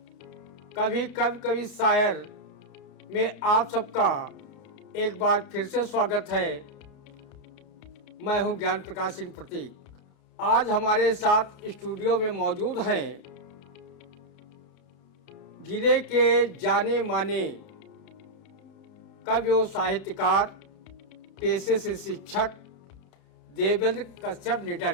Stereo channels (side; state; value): right; late; 31 ms